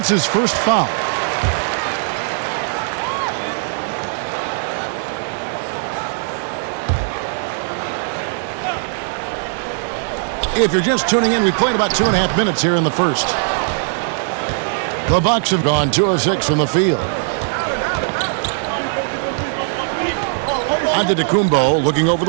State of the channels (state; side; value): silent; left; digital silence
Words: his first foul. If you're just tuning in, we played about 2.5 minutes here in the first. The Bucks have gone 2 of 6 from the field. Antetokounmpo looking over